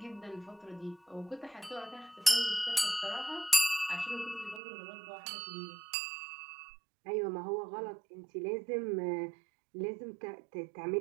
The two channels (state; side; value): drops out; left; at 4.6 s